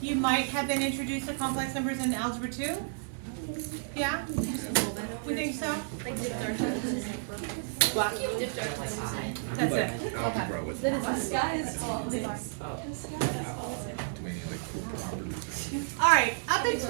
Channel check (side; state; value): left; silent; digital silence